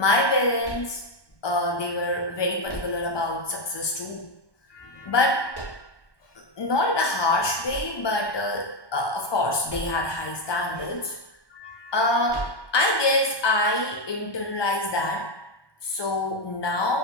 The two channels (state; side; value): late; right; 1.2 ms